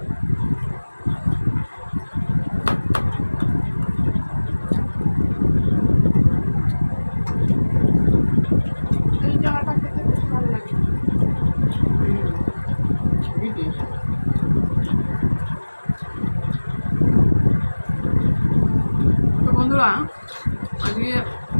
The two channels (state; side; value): inverted; both; correlation -1.00